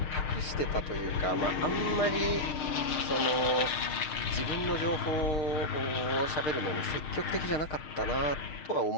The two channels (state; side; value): late; right; 6.5 ms